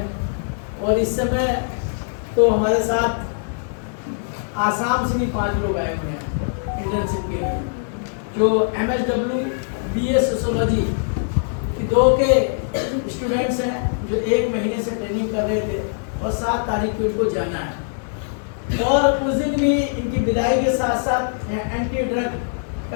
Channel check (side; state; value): right; silent; digital silence